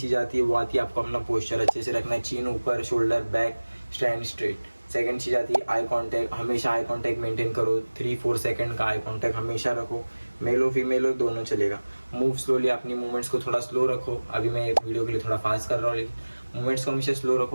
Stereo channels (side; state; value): both; inverted; correlation -1.00